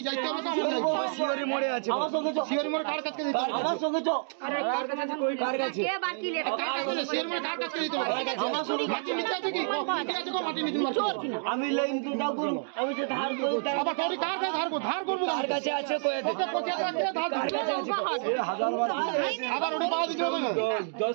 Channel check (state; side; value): silent; left; digital silence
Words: যাইতে হবে তো আমরা যাইবো। শিওরি মোড়ে আছে আমার সঙ্গে শিওরি মোড় কার কাছে দিতে হবে? আমার সঙ্গে কার কাছে শিওরি মোড় কার কাছে দিতে হবে? আমার সঙ্গে মাটি নিতে আছে কি ঠিক আছে, মাটি নিতে মার আমি লাইন তো দাও করব, আমি যে ধার করি আবার তোর কার কাছে ধার করব, কার কাছে আছে কই ওকে 25,000 টাকা ধার কার কাছে আছে 1000 বার আবার ওটা পাওয়া দিতে হবে না।